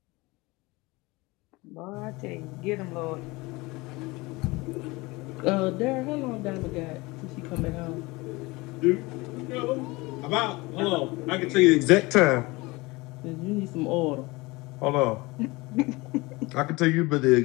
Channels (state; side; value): quieter; right; 23.1 dB